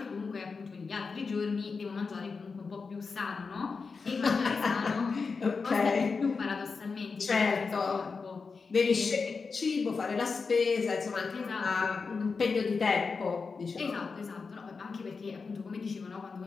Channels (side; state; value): right; quieter; 4.8 dB